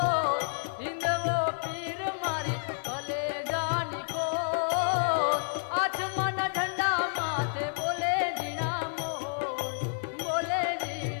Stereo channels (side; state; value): right; silent; digital silence